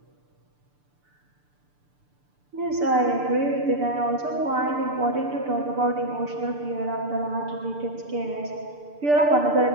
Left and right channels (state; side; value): late; left; 6.8 ms